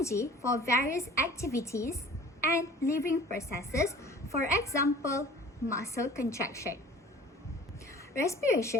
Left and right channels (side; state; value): both; normal; correlation 0.46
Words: for various activities and living processes, for example, muscle contraction.